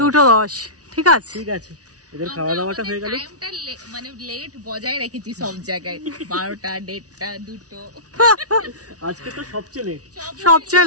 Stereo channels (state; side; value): late; left; 0.68 ms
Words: ঠিক আছে ঠিক আছে, এদের খাওয়া দাওয়াটা হয়ে গেল। টাইমটা মানে লেট বজায় রেখেছি সব জায়গায়, 12টা 1:30 2টো। আজকে তো সবচেয়ে